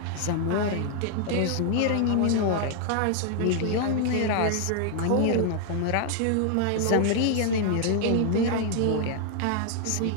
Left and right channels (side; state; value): both; different; correlation 0.00